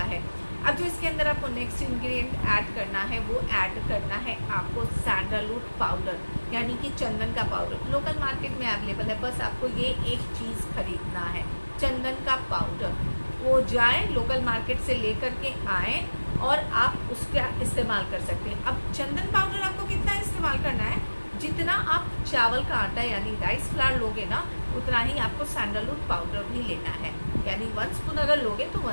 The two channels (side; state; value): both; inverted; correlation -1.00